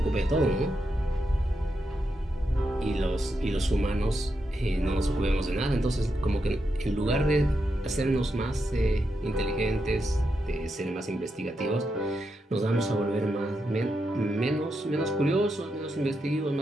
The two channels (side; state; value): both; normal; correlation 0.84